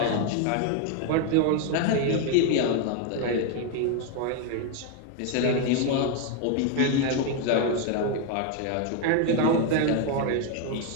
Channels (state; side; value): different; both; correlation 0.01